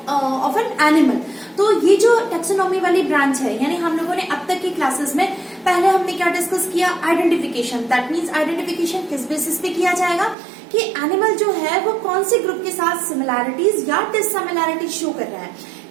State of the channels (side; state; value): left; drops out; at 10.4 s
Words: an animal. तो ये जो टेक्सोनॉमी वाली ब्रांच है, यानी हम लोगों ने अब तक की क्लासेस में पहले हमने क्या डिस्कस किया? आइडेंटिफिकेशन. दैट मीन्स आइडेंटिफिकेशन किस बेसिस पे किया जाएगा कि एनिमल जो है वो कौन से ग्रुप के साथ सिमिलैरिटीज या डिससिमिलैरिटीज शो कर रहा है,